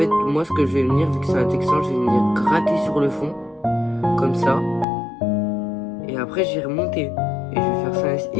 moi, ce que je vais venir, vu que c'est un texan, je vais venir gratter sur le fond. Comme ça. Et après, j'ai remonté. Et je vais faire ça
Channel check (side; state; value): right; drops out; at 4.9 s